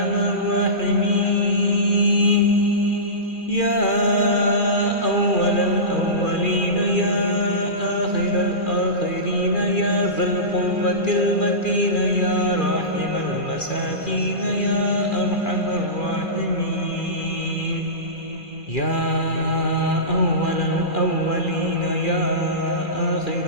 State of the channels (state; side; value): late; right; 2.4 ms